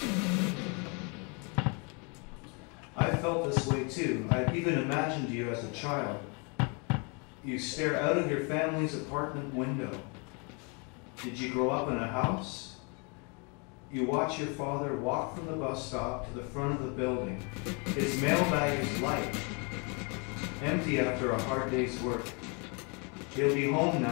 I felt this way too. I even imagined you as a child. You stare out of your family's apartment window. Did you grow up in a house? You watch your father walk from the bus stop to the front of the building. His mailbag is light, empty after a hard day's work. He'll be home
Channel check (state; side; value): quieter; right; 33.3 dB